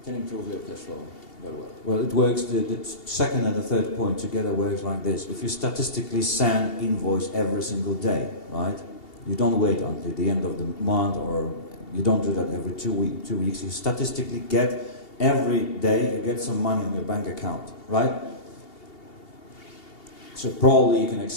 can improve your cash flow very well. Well, it works, the second and the third point together works like this. If you statistically send invoice every single day, right? You don't wait until the end of the month, or you don't do that every 2 weeks. You statistically get every day, you get some money on your bank account, right? So probably you can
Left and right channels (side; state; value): right; late; 2.8 ms